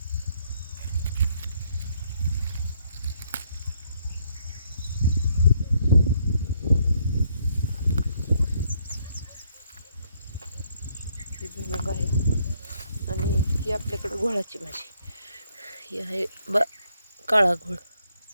भुईमुग आहे. आणि ही आपल्याकडं घोळाची भाजी. ही आहे काळा घोळ.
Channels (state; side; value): inverted; both; correlation -0.71